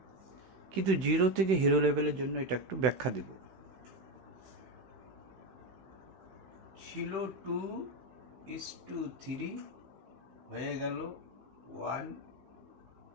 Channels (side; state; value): left; late; 16 ms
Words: কিন্তু 0 থেকে হিরো লেভেলের জন্য এটা একটু ব্যাখ্যা দেব। ছিল 2:3, হয়ে গেল